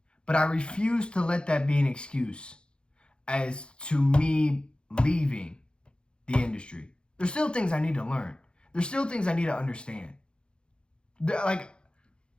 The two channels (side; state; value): right; late; 0.053 ms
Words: But I refuse to let that be an excuse as to me leaving the industry. There's still things I need to learn. There's still things I need to understand. Like,